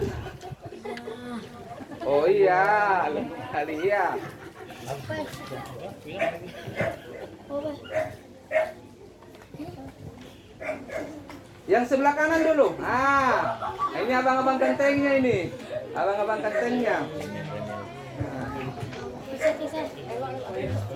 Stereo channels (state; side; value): identical; both; correlation 1.00